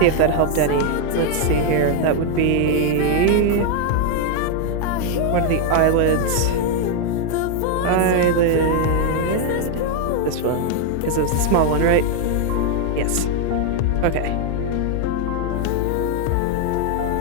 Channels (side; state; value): both; different; correlation 0.01